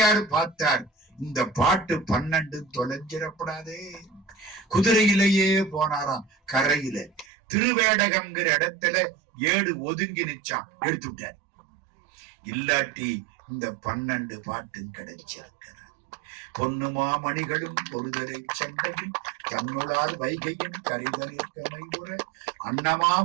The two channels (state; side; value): drops out; left; at 7.2 s